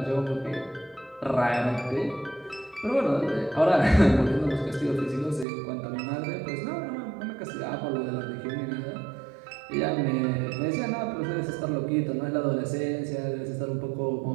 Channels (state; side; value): drops out; left; at 5.5 s